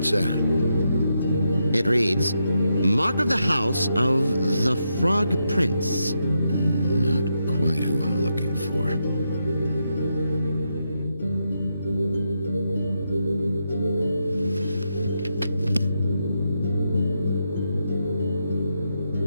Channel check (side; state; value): both; inverted; correlation -0.83